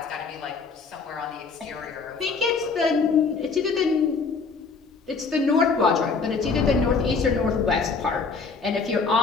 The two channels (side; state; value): right; quieter; 4.7 dB